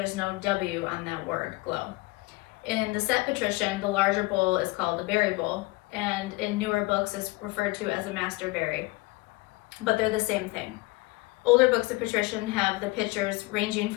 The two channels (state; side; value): quieter; right; 22.9 dB